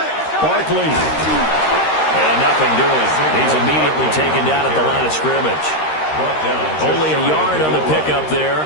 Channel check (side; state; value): right; late; 13 ms